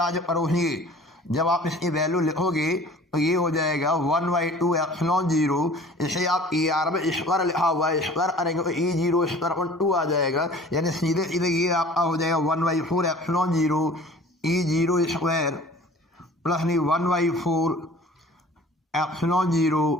पर होगी। जब आप इसकी वैल्यू लिखोगे तो ये हो जाएगा 1/2 एप्सिलॉन 0। इसे आप RMS स्क्वायर लिखा हुआ है, स्क्वायर करेंगे तो E0 स्क्वायर अपॉन 2 आ जाएगा, यानी सीधे सीधे ये आपका हो जाएगा 1/4 एप्सिलॉन 0 E0 स्क्वायर प्लस नहीं 1/4 एप्सिलॉन 0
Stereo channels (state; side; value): normal; both; correlation 0.47